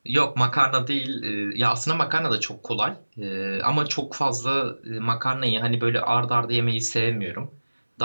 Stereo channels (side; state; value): both; inverted; correlation -1.00